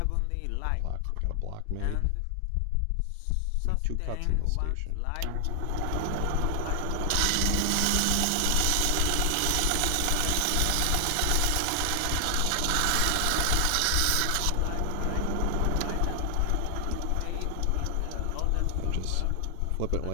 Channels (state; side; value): different; both; correlation 0.00